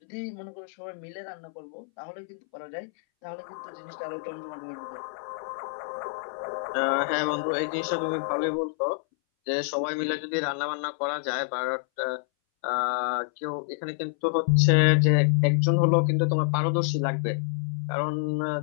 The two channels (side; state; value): right; silent; 60 dB below the other